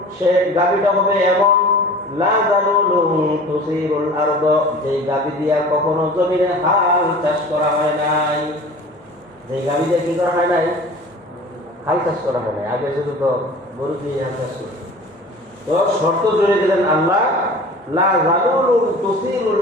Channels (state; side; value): normal; both; correlation 0.41